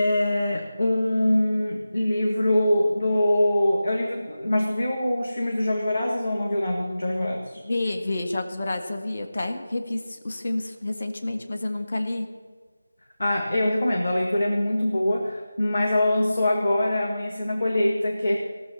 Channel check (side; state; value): both; inverted; correlation -0.94